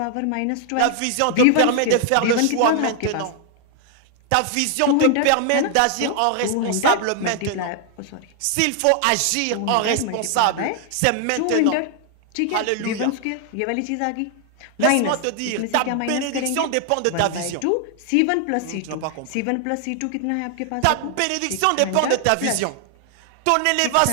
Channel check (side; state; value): both; different; correlation 0.00